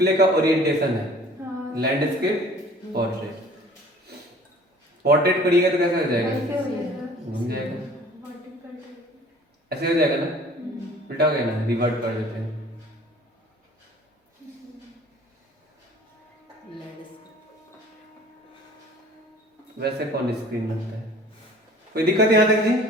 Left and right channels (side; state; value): both; normal; correlation 0.50